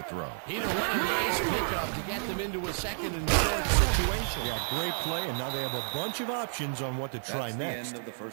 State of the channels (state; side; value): silent; left; 57 dB below the other